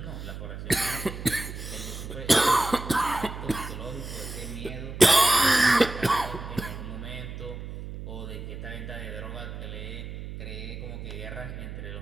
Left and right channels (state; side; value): noise; right; hum, 9 dB below the sound